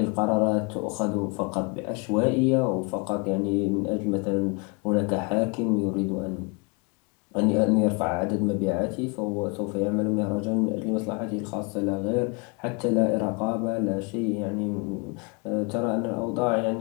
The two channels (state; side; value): quieter; right; 31.5 dB